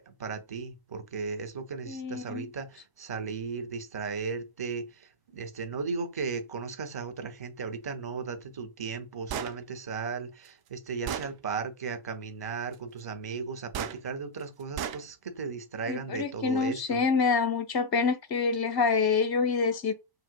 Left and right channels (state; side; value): late; right; 1.0 ms